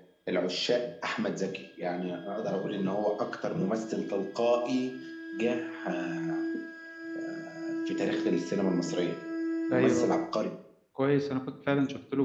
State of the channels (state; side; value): identical; both; correlation 1.00